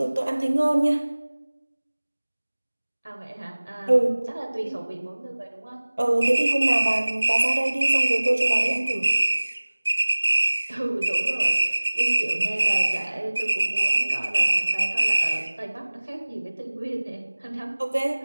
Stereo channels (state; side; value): inverted; both; correlation -1.00